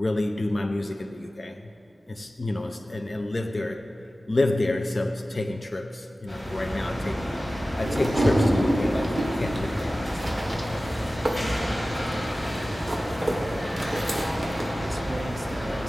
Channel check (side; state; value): both; normal; correlation 0.96